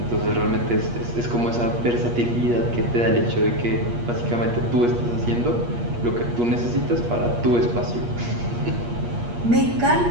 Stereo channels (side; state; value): left; late; 8.4 ms